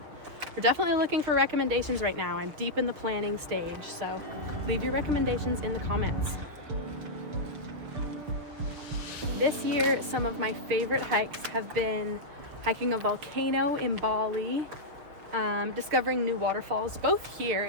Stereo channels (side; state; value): left; late; 6.9 ms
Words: we're definitely looking for recommendations right now. I'm deep in the planning stage, so leave your recommendations in the comments. This year, some of my favorite hikes have been hiking a volcano in Bali, discovering new waterfalls both here